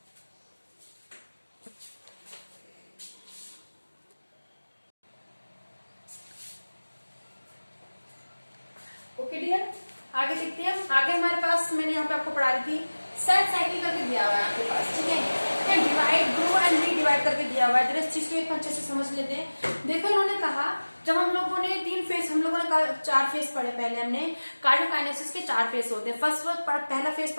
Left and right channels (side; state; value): both; inverted; correlation -1.00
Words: ओके डियर, आगे देखते हैं। आगे हमारे पास मैंने यहाँ पे आपको पढ़ा रही थी, सेल साइकिल करके दिया हुआ है आपके पास, ठीक है, डिवाइड, ग्रो एंड रीडिवाइड करके दिया हुआ है, इस चीज को एक अच्छे से समझ लेते हैं। देखो इन्होंने कहा जब हम लोगों ने 3 फेस, हम लोगों ने 4 फेस पढ़े पहले हमने, कार्डियोकाइनेसिस के 4 फेस होते हैं। पहला फेस